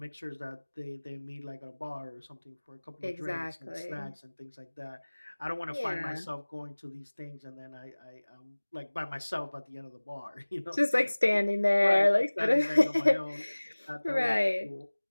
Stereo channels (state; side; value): inverted; both; correlation -1.00